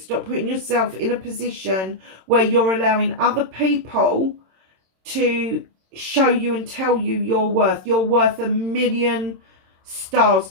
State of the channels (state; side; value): late; left; 26 ms